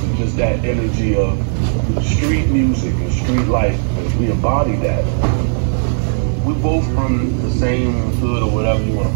just that energy of street music and street life. like we embody that. We both from the same hood or whatever you want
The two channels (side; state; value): left; silent; digital silence